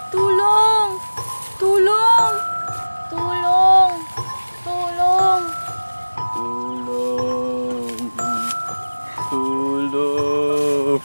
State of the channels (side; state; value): both; inverted; correlation -1.00